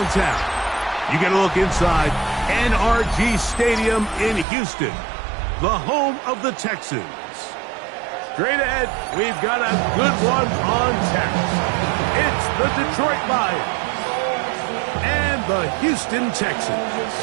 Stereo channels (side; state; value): left; drops out; at 4.5 s